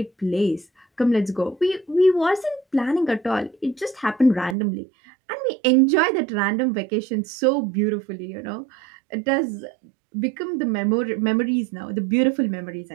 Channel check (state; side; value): drops out; left; at 4.5 s